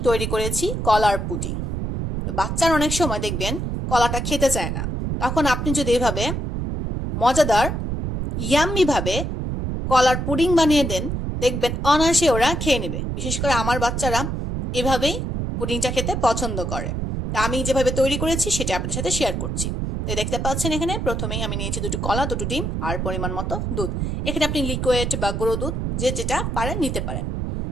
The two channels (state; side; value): noise; right; rumble, 2 dB below the sound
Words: তৈরি করেছি কলার পুডিং। বাচ্চারা অনেক সময় দেখবেন কলাটা খেতে চায় না, তখন আপনি যদি এভাবে মজাদার ইয়াম্মি ভাবে কলার পুডিং বানিয়ে দেন, দেখবেন অনায়াসে ওরা খেয়ে নেবে। বিশেষ করে আমার বাচ্চারা এভাবেই পুডিংটা খেতে পছন্দ করে। তা আমি যেভাবে তৈরি করেছি সেটা আপনাদের সাথে শেয়ার করছি। তো দেখতে পাচ্ছেন এখানে প্রথমেই আমি নিয়েছি দুটো কলা, দুটো ডিম আর পরিমাণ মতো দুধ। এখানে আপনি লিকুইড বা গুঁড়ো দুধ যে যেটা পারেন নিতে পারেন।